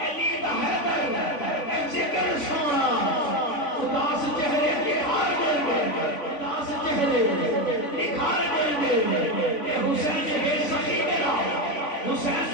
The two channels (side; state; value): right; late; 3.5 ms